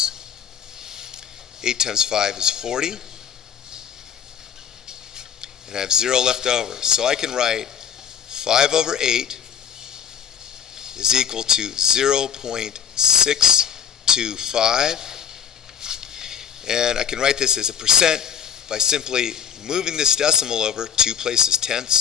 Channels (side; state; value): right; quieter; 8.4 dB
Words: 8 times 5 is 40. And I have 0 left over. So I can write 5/8 is equal to 0.625. And I can write this as a percent by simply moving this decimal over 2 places,